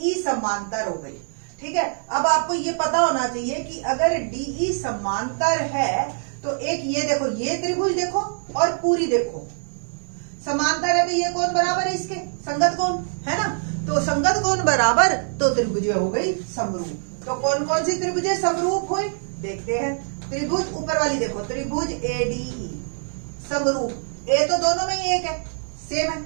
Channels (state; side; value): silent; left; digital silence